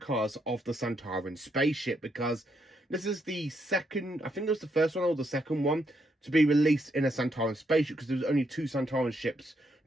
of the Sontaran spaceship, because this is the second, I think it was the first one or the second one to be released in a Sontaran spaceship, because there was only two Sontaran ships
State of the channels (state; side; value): normal; both; correlation 0.77